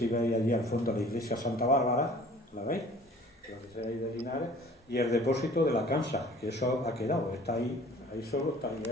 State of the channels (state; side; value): normal; both; correlation 0.49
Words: veis allí al fondo la iglesia Santa Bárbara, ¿la veis? Donde se veis de Linares, y el depósito de la Cansa, que eso ha quedado, está ahí solo, está ahí